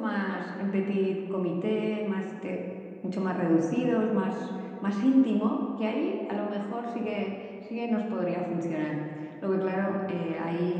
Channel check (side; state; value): both; identical; correlation 1.00